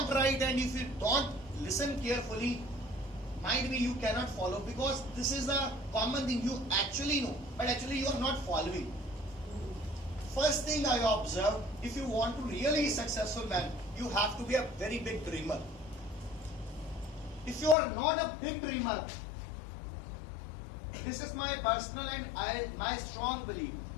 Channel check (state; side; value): drops out; right; at 17.8 s